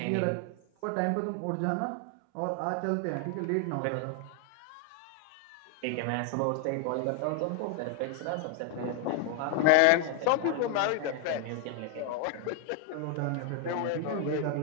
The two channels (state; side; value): different; both; correlation 0.00